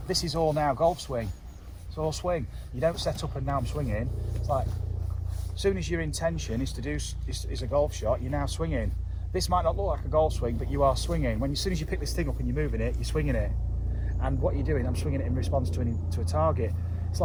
this is all now golf swing. It's all swing. You don't set up and now I'm swinging. It's like, as soon as your intention is to do is a golf shot, you're now swinging. This might not look like a golf swing, but you are swinging. As soon as you pick this thing up and you're moving it, you're swinging it. And what you're doing, I'm swinging it in response to a target. It's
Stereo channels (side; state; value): both; identical; correlation 1.00